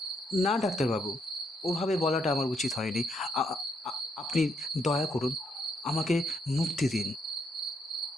না ডাক্তারবাবু, ওভাবে বলাটা আমার উচিত হয়নি। আপনি দয়া করুন, আমাকে মুক্তি দিন।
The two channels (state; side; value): normal; both; correlation 0.75